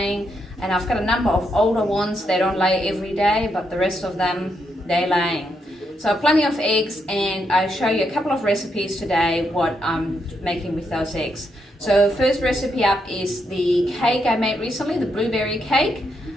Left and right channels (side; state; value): both; normal; correlation 0.79